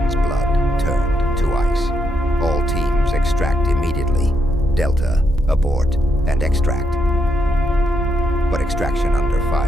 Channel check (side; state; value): both; normal; correlation 0.79